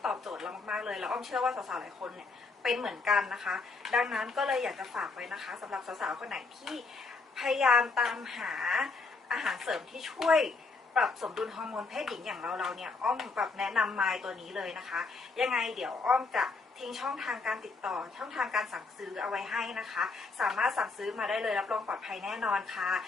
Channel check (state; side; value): quieter; right; 4.1 dB